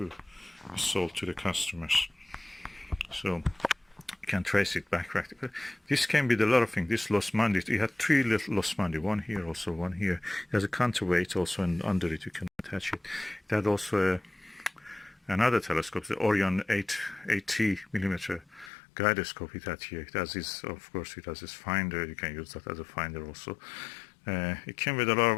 be sold to the customers. So you can trace it back practically. This came with a lot of things. This Los Mandi, it had 3 little Los Mandi, one here, also one here. It has a counterweight also, and under it you can attach it. It had also another telescope, the Orion 80 millimeter gyroscope it had here. It has this, of course, it has this finder. You can use that as a finder also. It came with a lot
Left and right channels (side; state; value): right; drops out; at 18.7 s